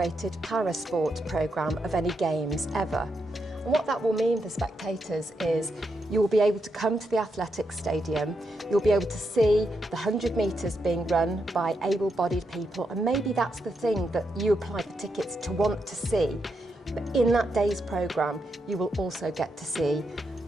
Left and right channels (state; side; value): normal; both; correlation 0.83